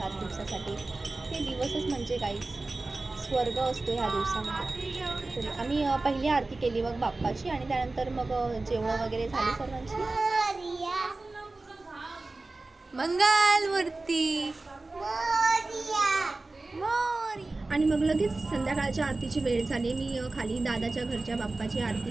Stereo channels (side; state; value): left; quieter; 3.2 dB